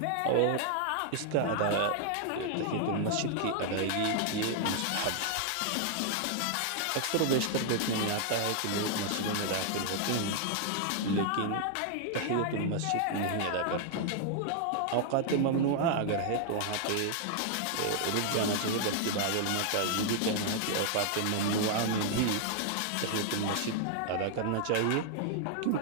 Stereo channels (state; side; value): different; both; correlation 0.00